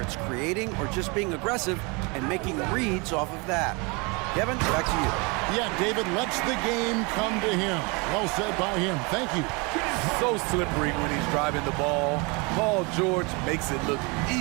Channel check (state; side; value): quieter; left; 29.1 dB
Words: it's creating or just being aggressive and making reads off of that. Kevin, back to you. Yeah, David lets the game come to him. Well said by him. Thank you. So slippery when he's driving the ball. Paul George makes it look